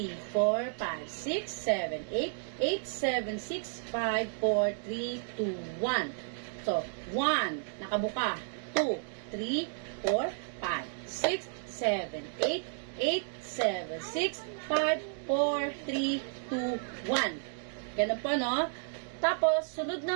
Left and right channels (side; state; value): left; silent; digital silence